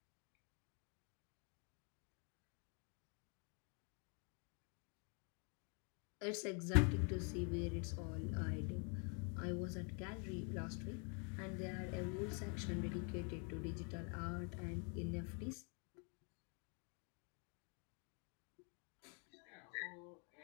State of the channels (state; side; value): quieter; right; 37.4 dB